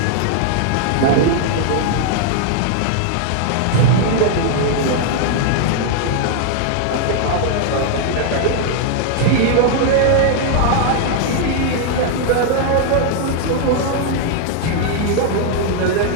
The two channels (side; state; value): both; different; correlation 0.00